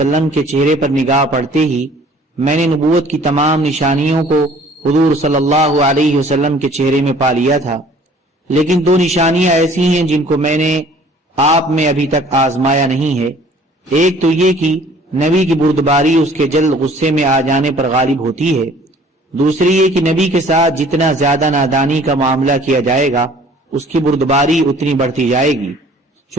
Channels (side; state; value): both; normal; correlation 0.53